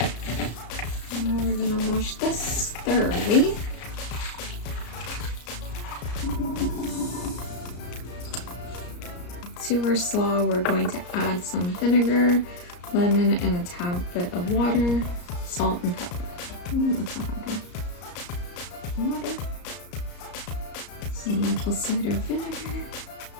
Now we're gonna wash this thoroughly. To our slaw, we're going to add some vinegar, lemon, and a tad bit of water, salt, and pepper. That's not hard. Water, some maple cider vinegar,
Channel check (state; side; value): late; right; 34 ms